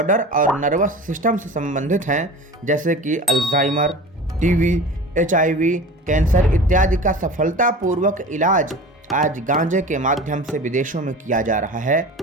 और नर्वस सिस्टम से संबंधित हैं, जैसे कि अल्जाइमर, टीबी, HIV, कैंसर इत्यादि का सफलतापूर्वक इलाज आज गांजे के माध्यम से विदेशों में किया जा रहा है।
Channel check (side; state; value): both; normal; correlation 0.36